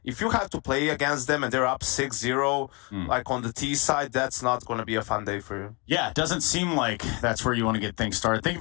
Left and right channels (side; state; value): right; quieter; 30.1 dB